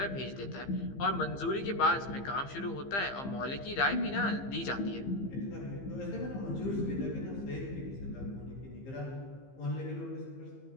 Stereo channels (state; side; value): late; right; 15 ms